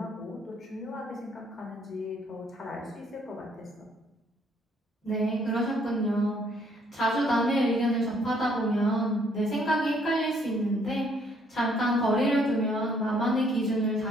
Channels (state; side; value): normal; both; correlation 0.65